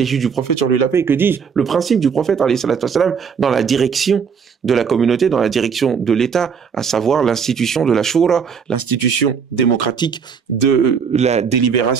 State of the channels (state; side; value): quieter; left; 6.5 dB